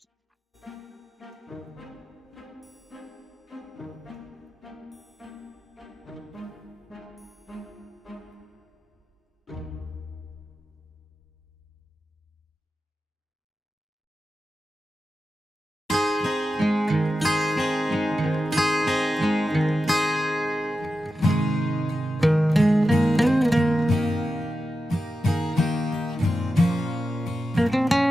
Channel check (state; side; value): normal; both; correlation 0.91